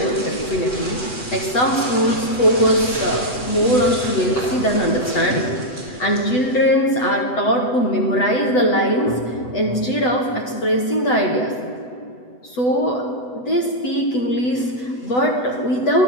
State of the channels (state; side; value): late; right; 8.0 ms